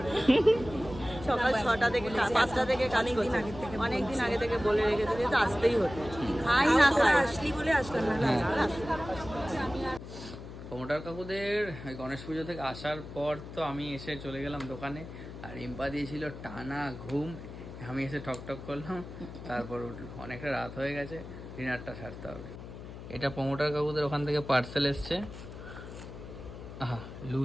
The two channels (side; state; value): left; noise; hum, 12 dB below the sound